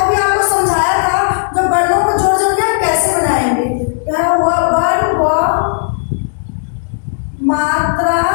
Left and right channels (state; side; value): silent; right; digital silence